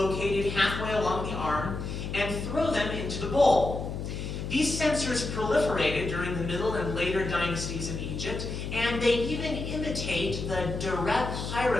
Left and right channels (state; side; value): noise; left; hum, 5 dB below the sound